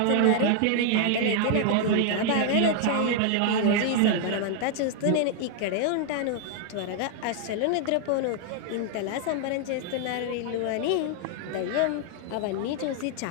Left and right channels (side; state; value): both; different; correlation 0.00